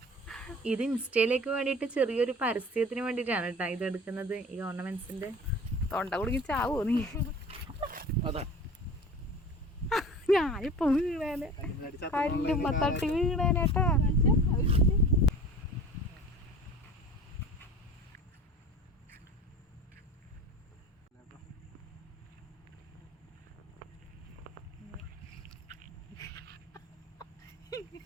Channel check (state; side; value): normal; both; correlation 0.39